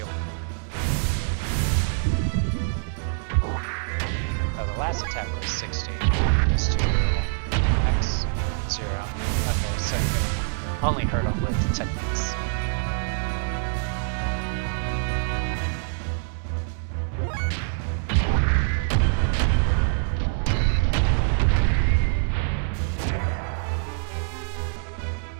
Oh, the last attack was 60. It's 2 X 0. Okay, so you can only hurt him with techniques.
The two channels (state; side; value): silent; left; 61 dB below the other